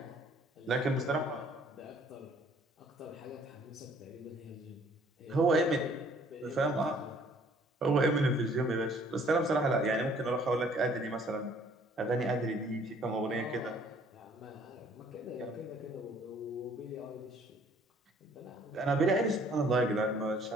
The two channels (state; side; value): normal; both; correlation 0.59